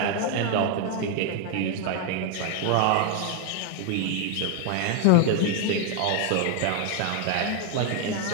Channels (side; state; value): both; different; correlation 0.00